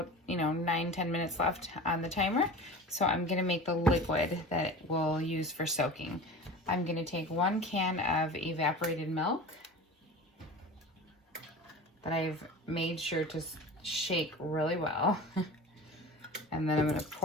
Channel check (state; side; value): normal; both; correlation 0.35